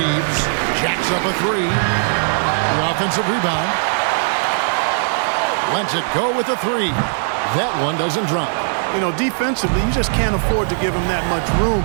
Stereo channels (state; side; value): silent; left; 59 dB below the other